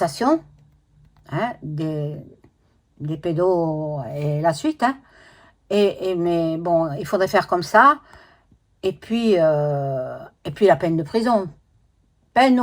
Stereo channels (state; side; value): identical; both; correlation 1.00